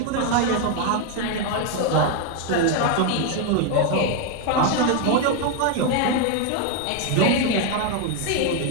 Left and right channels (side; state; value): both; different; correlation 0.01